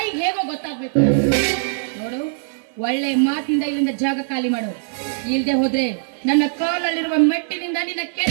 ಹೇಗೋ ಗೊತ್ತಾಗ್ಬೇಕು. ನೋಡು, ಒಳ್ಳೆ ಮಾತಿಂದ ಇಲ್ಲಿಂದ ಜಾಗ ಖಾಲಿ ಮಾಡು. ಇಲ್ದೆ ಹೋದ್ರೆ ನನ್ನ ಕಾಲಲ್ಲಿರುವ ಮೆಟ್ಟಿನಿಂದ ನಿನ್ನ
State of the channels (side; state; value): left; silent; digital silence